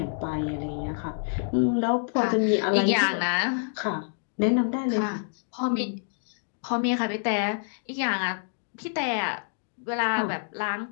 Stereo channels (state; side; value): silent; right; digital silence